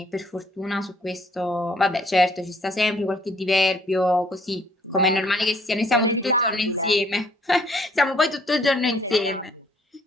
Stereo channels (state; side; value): normal; both; correlation 0.62